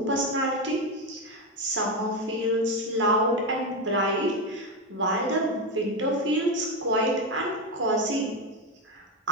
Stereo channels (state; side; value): normal; both; correlation 0.11